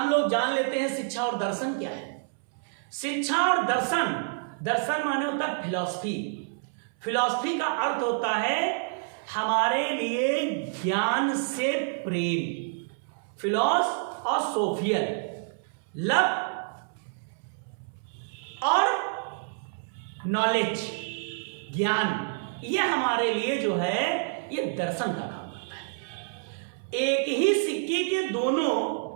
लोग जान लेते हैं शिक्षा और दर्शन क्या है। शिक्षा और दर्शन, दर्शन माने होता है फिलॉसफी, फिलॉसफी का अर्थ होता है हमारे लिए ज्ञान से प्रेम, फिलॉस और सोफियल, लव और नॉलेज, ज्ञान, ये हमारे लिए जो है ये दर्शन का काम करता है। एक ही सिक्के के दोनों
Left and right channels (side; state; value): left; silent; 59 dB below the other